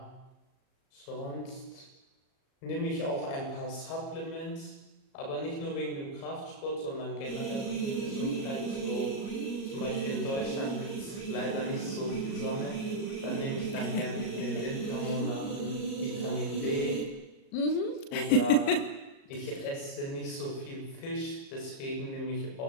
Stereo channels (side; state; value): right; late; 37 ms